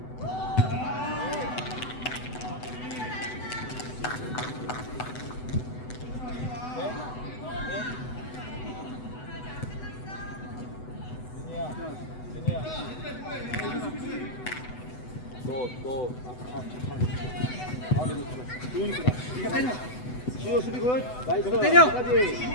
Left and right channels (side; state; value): right; late; 8.0 ms